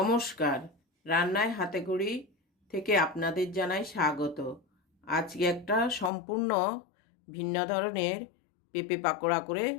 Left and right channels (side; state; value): right; drops out; at 6.1 s